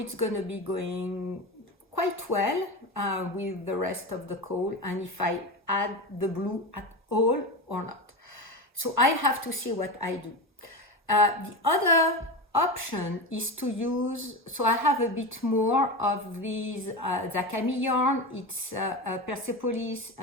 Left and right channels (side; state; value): both; normal; correlation 0.22